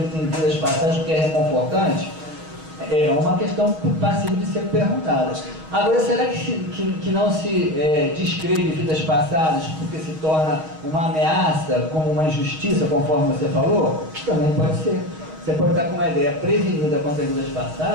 em vidas passadas porque é reconfortante? É uma questão passível de ser perguntada. Agora, será que não se descreve vidas passadas porque se torna uma ameaça, como uma injustiça, conforme você falou? Também pode ser. Você pode estar com uma ideia prevenida contra vidas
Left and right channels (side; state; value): left; late; 6.3 ms